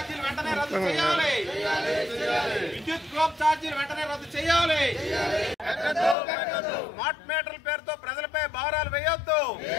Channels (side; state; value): right; drops out; at 6.2 s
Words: వెంటనే రద్దు చేయాలి. విద్యుత్ డ్రాప్ ఛార్జీలు వెంటనే రద్దు చేయాలి. స్మార్ట్ మీటర్ల పేరుతో ప్రజలపై భారాలు వేయొద్దు.